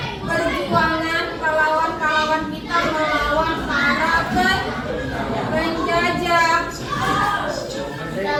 perjuangan pahlawan-pahlawan kita melawan para penjajah. Kita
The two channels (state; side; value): identical; both; correlation 1.00